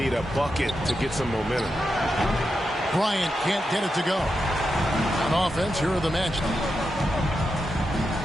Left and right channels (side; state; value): both; normal; correlation 0.87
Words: a bucket to get some momentum. Bryant can't get it to go. On offense, here are the Magic.